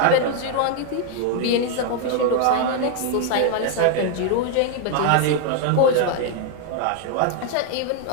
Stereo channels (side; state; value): both; different; correlation 0.00